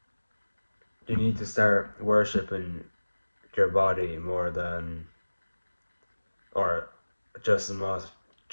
you need to start worshipping your body more than, or just as much,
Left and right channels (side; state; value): both; inverted; correlation -1.00